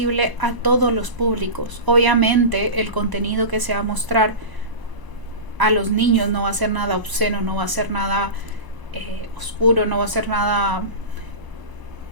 a todos los públicos. Obviamente el contenido que se va a mostrar a los niños no va a ser nada obsceno, no va a ser nada oscuro, no va a ser nada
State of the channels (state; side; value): late; left; 1.0 ms